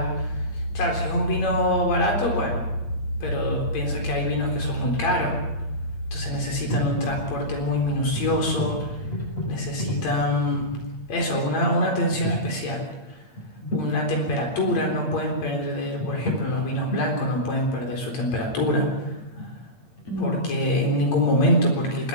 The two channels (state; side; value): late; right; 8.7 ms